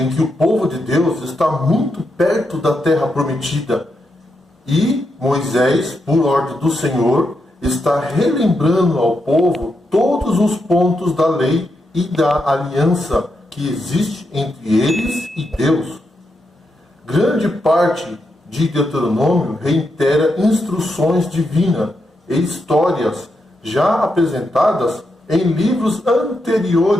que o povo de Deus está muito perto da terra prometida e Moisés, por ordem do Senhor, está relembrando ao povo todos os pontos da lei e da aliança que existe entre eles e Deus. Grande parte de Deuteronômio reitera instruções divinas e histórias já apresentadas em livros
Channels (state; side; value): normal; both; correlation 0.84